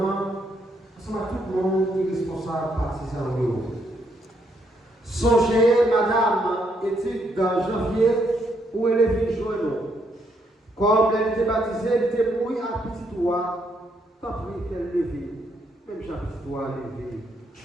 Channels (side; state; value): both; normal; correlation 0.74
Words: C'est tout le monde qui est responsable partisan de vous. Songez, madame, étude dans janvier, où elle est venue joindre. Comme elle était baptisée, elle était mouillée à petit doigt, tant pis qu'elle levée, même j'ai petit doigt levé.